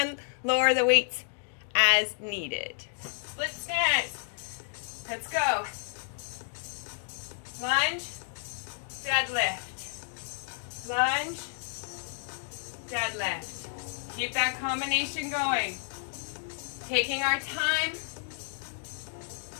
lower the weights as needed. Split stance. Let's go. Lunge, deadlift. Lunge, deadlift. Keep that combination going. Taking our time.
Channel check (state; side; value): silent; right; digital silence